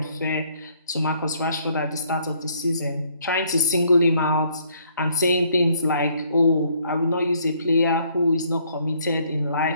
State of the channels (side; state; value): both; inverted; correlation -0.66